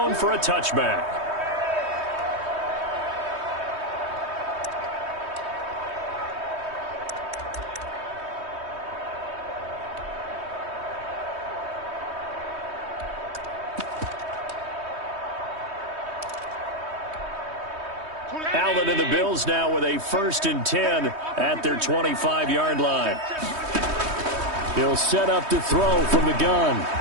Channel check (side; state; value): left; late; 3.2 ms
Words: for a touchback. Allen and the Bills now with a 1st and 10 at their 25-yard line. He'll set up to throw from the gun.